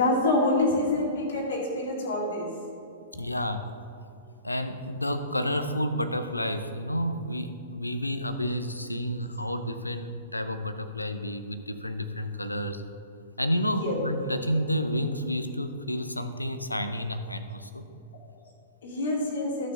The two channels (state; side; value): inverted; both; correlation -0.52